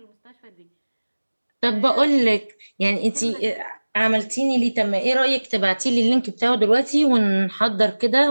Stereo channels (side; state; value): both; inverted; correlation -1.00